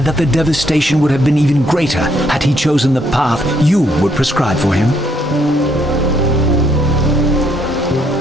that the devastation would have been even greater had he chosen the path you would prescribe for him?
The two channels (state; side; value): normal; both; correlation 0.70